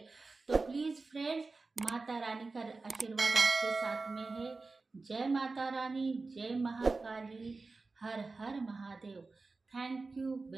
तो प्लीज़ फ्रेंड्स, माता रानी का आशीर्वाद आपके साथ में है। जय माता रानी, जय महाकाली, हर हर Mahadev. Thank you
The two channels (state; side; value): quieter; left; 3.8 dB